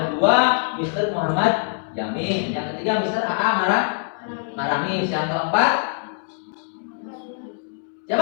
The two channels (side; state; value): right; silent; digital silence